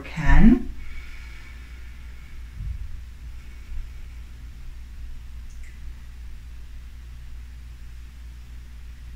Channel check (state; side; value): identical; both; correlation 1.00